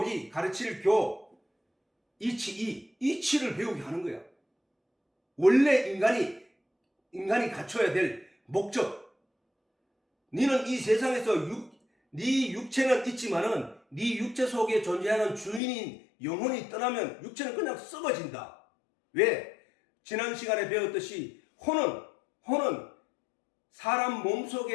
가르칠 이치를 배우게 하는 거야. 원래 인간이 갖춰야 될 목적, 너는 이 세상에서 네 육체는 있지만은 네 육체 속에 존재하는 주인인 영혼이 떠나면 육체는 그냥 썩어진다. 왜? 지난 시간에 배웠듯이 혼은 사람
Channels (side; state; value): right; drops out; at 15.6 s